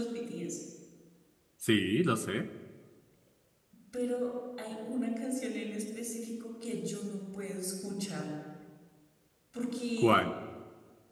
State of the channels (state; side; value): identical; both; correlation 1.00